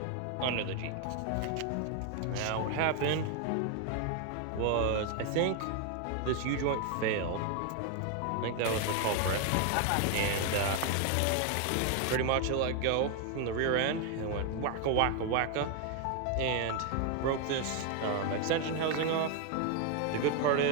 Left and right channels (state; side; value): different; both; correlation 0.00